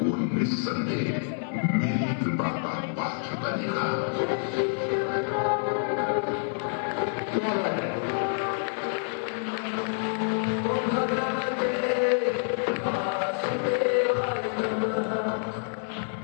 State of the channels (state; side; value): silent; right; 60 dB below the other